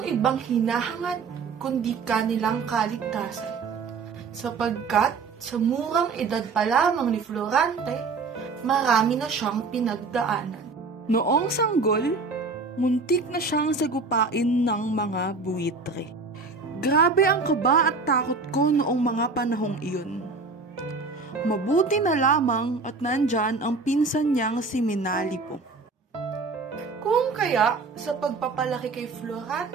ibang hinahangad kundi kanilang kaligtasan. Sapagkat sa murang edad pa lamang ni Florante, marami na siyang pinagdaanan. Noong sanggol, muntik na siyang sagupain ng mga buwitre. Grabe ang kaba at takot ko noong mga panahong iyon. Mabuti na lamang at nandyan ang pinsan niyang si Minalipo. Kung kaya sa pagpapalaki kay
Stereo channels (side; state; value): left; quieter; 4.2 dB